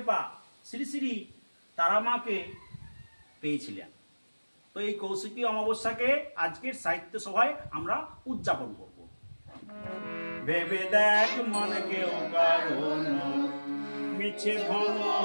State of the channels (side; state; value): both; inverted; correlation -1.00